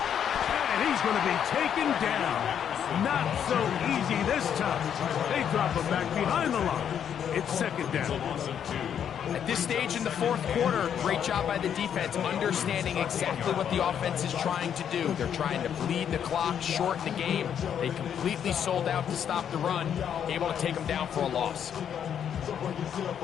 And he's going to be taken down. Not so easy this time. They drop him back behind the line. It's second down. At this stage in the fourth quarter, great job by the defense, understanding exactly what the offense is trying to do. They're trying to bleed the clock, shorten the game. They completely sold out to stop the run, able to take them down for a loss.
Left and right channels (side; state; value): right; quieter; 8.7 dB